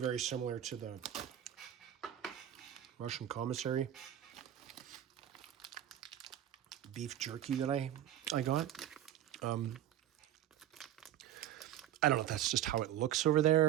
similar to the Russian commissary beef jerky that I got. I don't know if that's just how it looks over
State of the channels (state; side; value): quieter; left; 11.6 dB